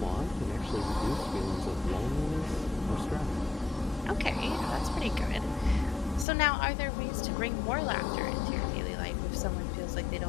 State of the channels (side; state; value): right; drops out; at 6.2 s